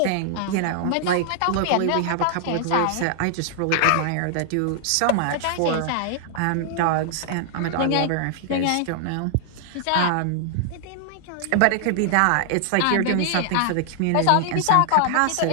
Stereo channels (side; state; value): both; different; correlation -0.01